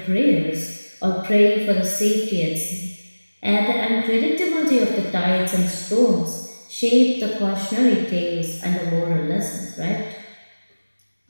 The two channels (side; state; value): both; inverted; correlation -1.00